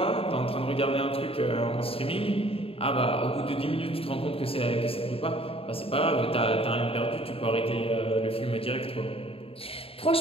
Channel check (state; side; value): late; right; 0.27 ms